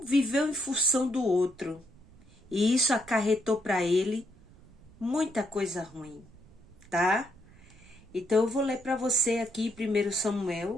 viveu em função do outro. E isso acarretou para ele muita coisa ruim, tá? Então eu vou ler para você aqui 1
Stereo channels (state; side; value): noise; right; rumble, 24 dB below the sound